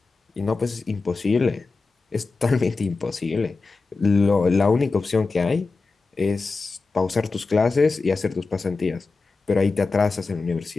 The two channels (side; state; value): right; quieter; 4.0 dB